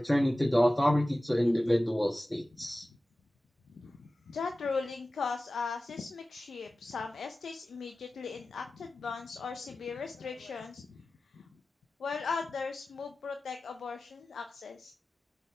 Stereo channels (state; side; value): normal; both; correlation 0.96